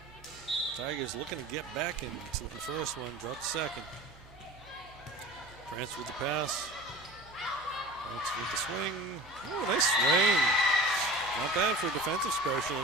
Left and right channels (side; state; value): right; noise; hum, 22 dB below the sound